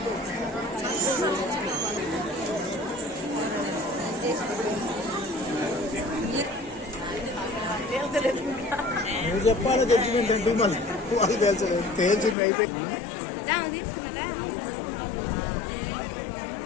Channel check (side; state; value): right; drops out; at 12.4 s